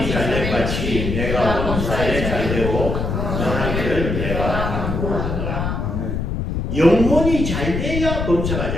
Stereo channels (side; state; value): left; noise; rumble, 2 dB below the sound